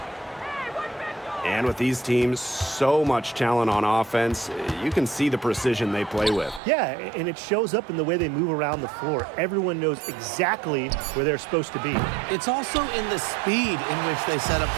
And with these teams, so much talent on offense, you can see the precision they play with. Yeah, and it shows up in the way they move around the floor. Everyone knows exactly where they're supposed to be. It's also in the speed in which they set up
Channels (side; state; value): left; drops out; at 6.6 s